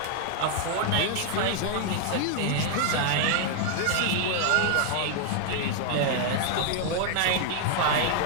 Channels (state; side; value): different; both; correlation 0.00